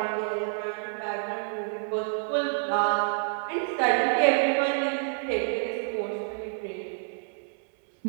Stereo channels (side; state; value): left; silent; 59 dB below the other